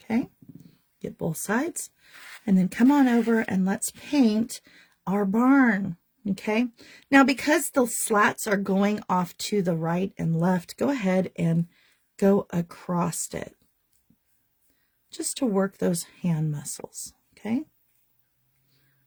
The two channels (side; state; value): both; identical; correlation 1.00